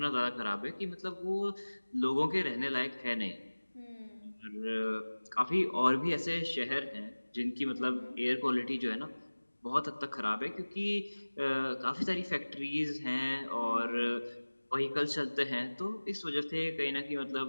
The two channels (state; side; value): inverted; both; correlation -1.00